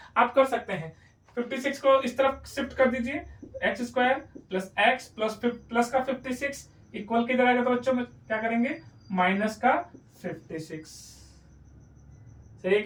आप कर सकते हैं। 56 को इस तरफ शिफ्ट कर दीजिए, x square plus x plus का 56 इक्वल किधर आएगा, तो बच्चों में क्या करेंगे माइनस का 56। सही है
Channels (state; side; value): identical; both; correlation 1.00